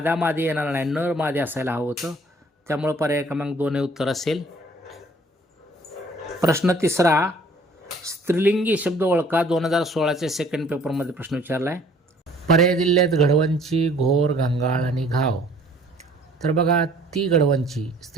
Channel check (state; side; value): normal; both; correlation 0.56